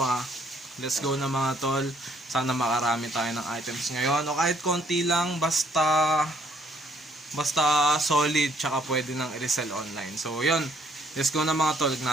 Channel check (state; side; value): normal; both; correlation 0.65